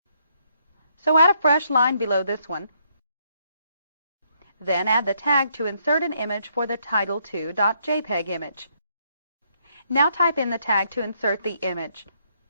So add a fresh line below this one. Then add the tag to insert an image for the title2.jpg image. Now type in the tag to insert the image.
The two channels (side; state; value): both; inverted; correlation -0.72